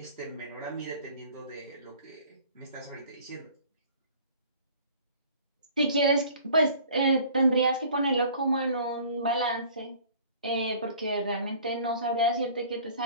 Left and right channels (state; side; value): inverted; both; correlation -0.49